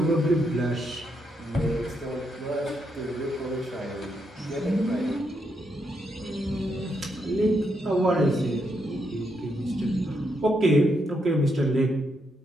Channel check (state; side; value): normal; both; correlation 0.79